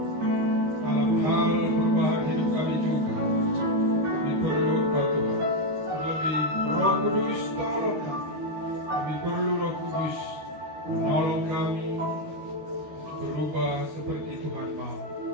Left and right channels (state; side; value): late; left; 13 ms